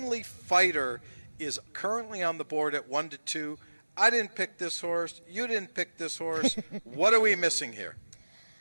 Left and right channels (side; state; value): both; inverted; correlation -1.00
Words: Fighter is currently on the board at 1-2. I didn't pick this horse. You didn't pick this horse. What are we missing here?